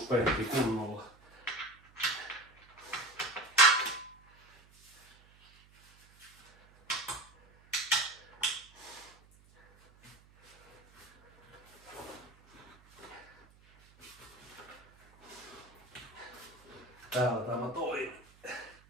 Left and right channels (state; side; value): noise; right; hum, 28 dB below the sound